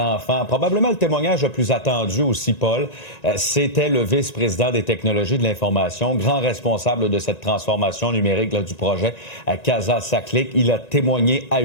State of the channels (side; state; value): right; late; 1.9 ms